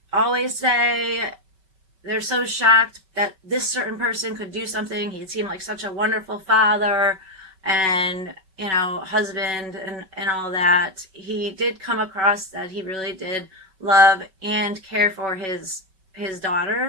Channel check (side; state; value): left; late; 5.2 ms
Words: always say they're so shocked that this certain person could do something. He seemed like such a wonderful father and husband and all that. He did come across that he really did love and care for his